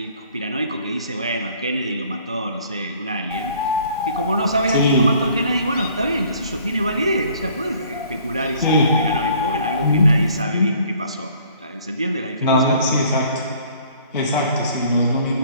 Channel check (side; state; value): both; inverted; correlation -0.56